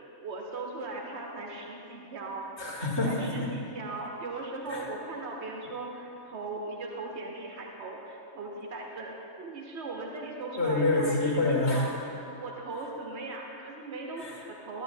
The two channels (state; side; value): late; left; 3.2 ms